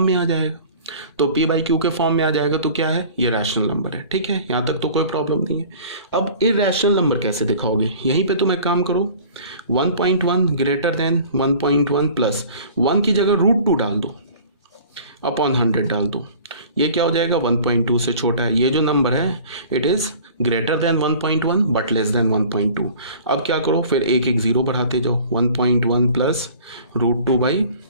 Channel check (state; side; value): inverted; both; correlation -0.46